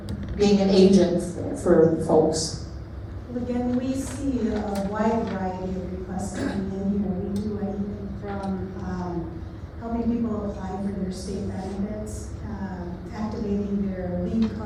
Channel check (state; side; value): identical; both; correlation 1.00